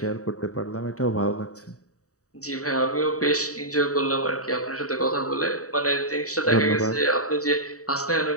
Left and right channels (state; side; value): late; right; 0.66 ms